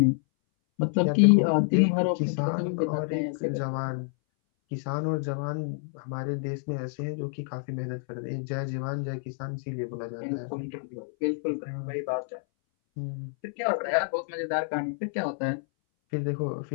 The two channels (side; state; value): right; silent; 59 dB below the other